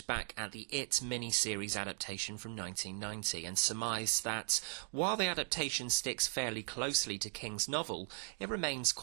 back at the It mini-series adaptation from 1990 and surmised that, while the adaptation sticks fairly closely to King's novel, it remains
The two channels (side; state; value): left; silent; 52 dB below the other